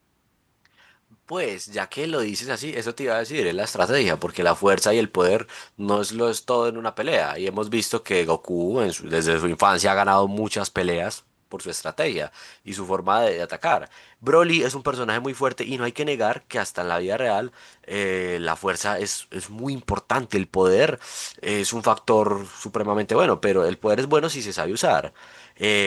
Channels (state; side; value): identical; both; correlation 1.00